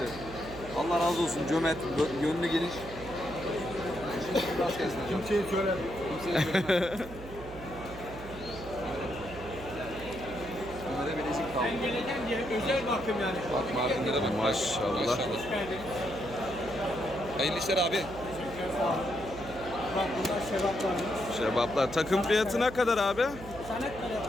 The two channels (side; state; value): right; noise; hum, 14 dB below the sound